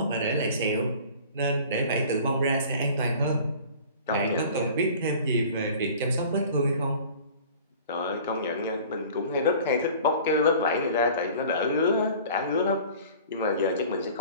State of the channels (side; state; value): both; inverted; correlation -0.44